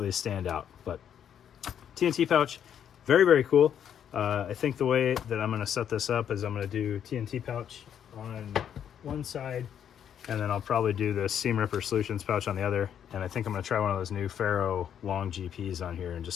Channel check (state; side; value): quieter; right; 9.1 dB